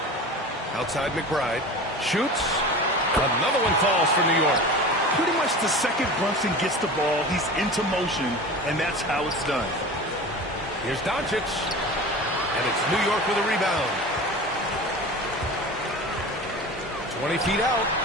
Outside McBride. Shoots. Another one falls for New York. Pretty much the second Brunson gets the ball, he's into motion, and that's how it's done. Here's Doncic. And it's New York with a rebound. 20 feet out.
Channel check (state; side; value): normal; both; correlation 0.34